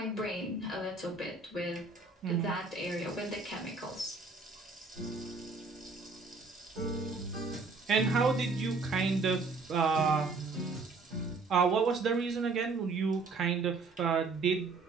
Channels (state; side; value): quieter; left; 4.0 dB